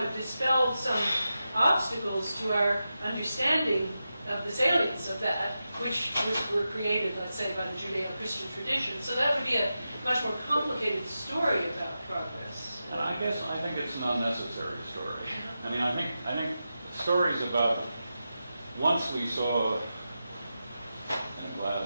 dispelled some obstacles to our understanding of the salience of that, which were created, let's say, by the Judeo-Christian tradition. So that would be a much more complicated story about progress. And I think it's an unnecessary story. I mean, I think stories about once we saw in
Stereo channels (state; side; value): inverted; both; correlation -0.91